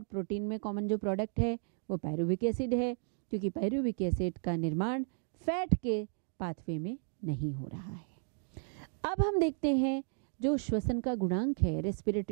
प्रोटीन में कॉमन जो प्रोडक्ट है वो पायरुविक एसिड है, क्योंकि पायरुविक एसिड का निर्माण फैट के पाथवे में नहीं हो रहा है। अब हम देखते हैं जो श्वसन का गुणांक है,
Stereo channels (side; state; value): left; silent; 55 dB below the other